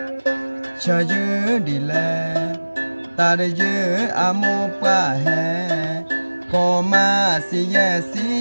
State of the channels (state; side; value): inverted; both; correlation -1.00